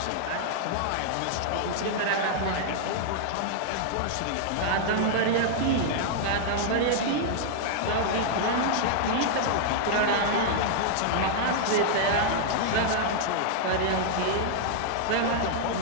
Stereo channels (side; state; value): both; different; correlation -0.01